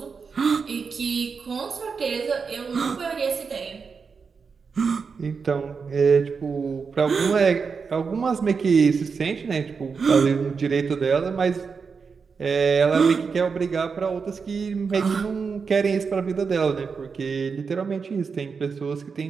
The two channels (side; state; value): left; quieter; 5.4 dB